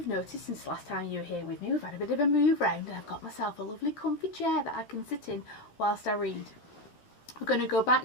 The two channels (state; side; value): late; right; 14 ms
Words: noticed since last time you were here with me we've had a bit of a move round and I've got myself a lovely comfy chair that I can sit in whilst I read. We're going to go back